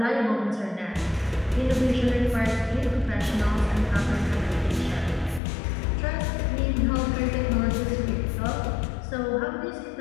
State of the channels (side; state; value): right; drops out; at 5.4 s